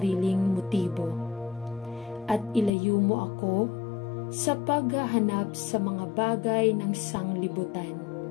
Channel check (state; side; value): drops out; right; at 2.7 s